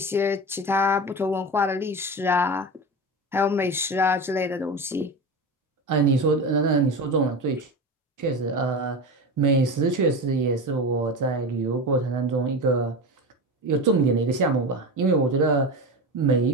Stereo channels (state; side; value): normal; both; correlation 0.25